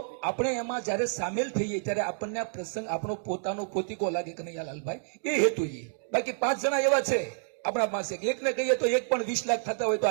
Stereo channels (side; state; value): left; silent; digital silence